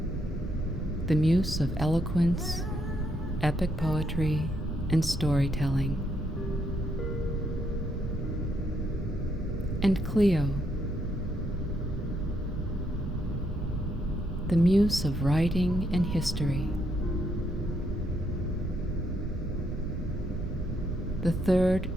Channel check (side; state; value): both; normal; correlation 0.75